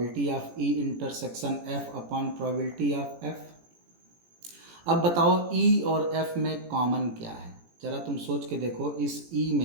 of E intersection F upon probability of F. अब बताओ ई और एफ में कॉमन क्या है, जरा तुम सोच के देखो। इस ई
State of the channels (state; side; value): late; left; 18 ms